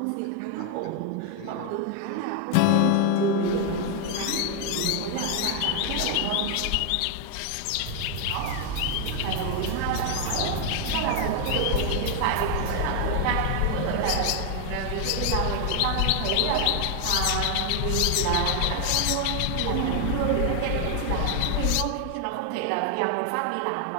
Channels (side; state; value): both; different; correlation 0.00